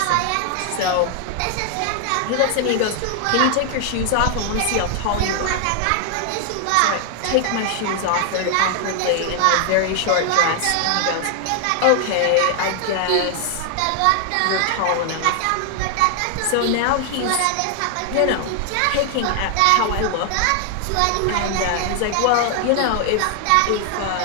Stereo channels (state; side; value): different; both; correlation 0.00